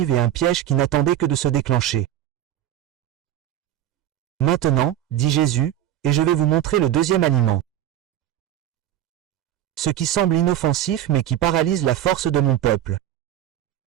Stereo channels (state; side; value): quieter; left; 12.0 dB